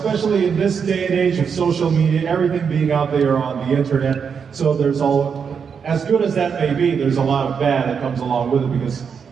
in this day and age of social media, everything being out there on the internet. So there's as good as that may be, there's a lot of bad that comes along with it, because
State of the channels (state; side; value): quieter; left; 6.5 dB